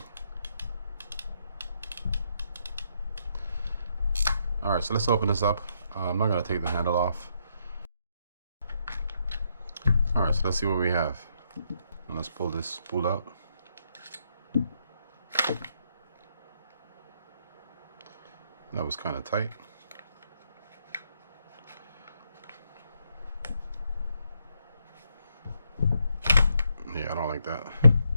All right, so let's open this up. I'm not gonna take the handle off. All right, so let's see what we have. And let's pull this spool out. That was kind of tight. Yeah, I don't like that.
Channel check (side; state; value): both; inverted; correlation -0.76